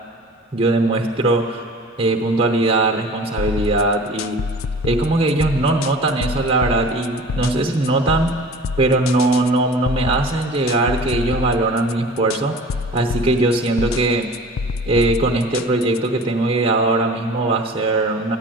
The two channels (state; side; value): normal; both; correlation 0.42